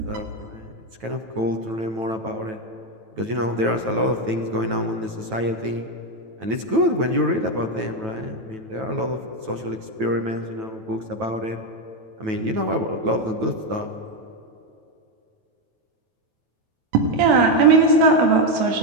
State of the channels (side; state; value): left; late; 9.2 ms